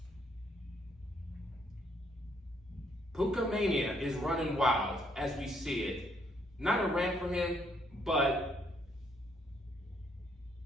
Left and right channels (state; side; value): normal; both; correlation 0.70